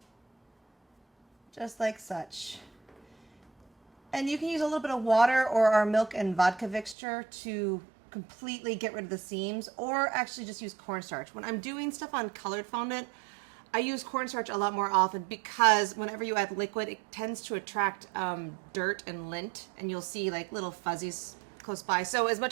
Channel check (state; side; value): drops out; left; at 7.0 s